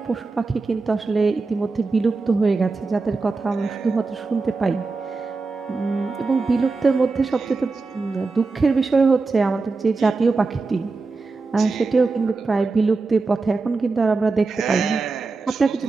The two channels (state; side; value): quieter; left; 4.0 dB